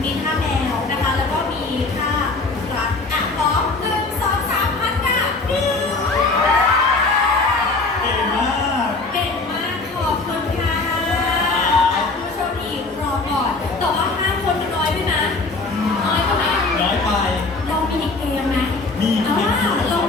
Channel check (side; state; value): right; quieter; 3.6 dB